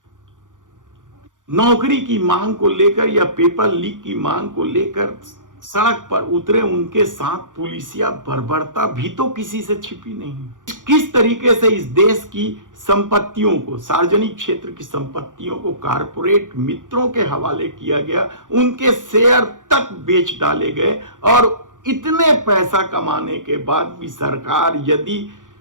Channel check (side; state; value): left; late; 0.88 ms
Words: नौकरी की मांग को लेकर या पेपर लीक की मांग को लेकर सड़क पर उतरे, उनके साथ पुलिसिया बर्बरता भी तो किसी से छिपी नहीं। किस तरीके से इस देश की संपत्तियों को, सार्वजनिक क्षेत्र की संपत्तियों को कारपोरेट मित्रों के हवाले किया गया, उनके शेयर तक बेच डाले गए, और इतने पैसा कमाने के बाद भी सरकार यदि